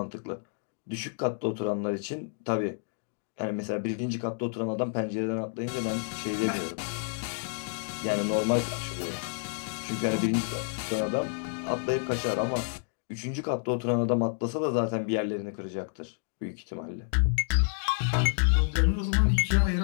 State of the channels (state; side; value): silent; right; digital silence